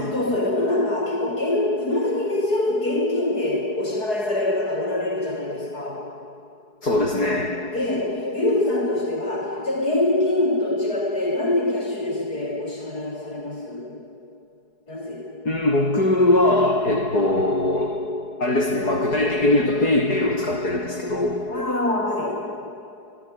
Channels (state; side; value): late; right; 4.7 ms